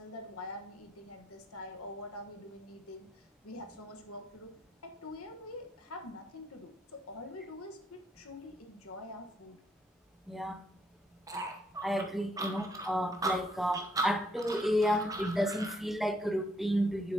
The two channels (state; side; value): normal; both; correlation 0.72